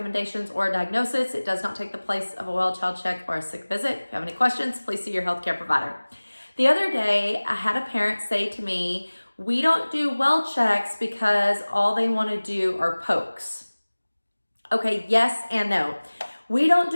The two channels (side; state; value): both; inverted; correlation -1.00